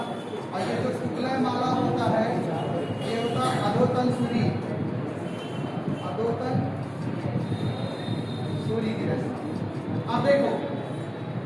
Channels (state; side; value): identical; both; correlation 1.00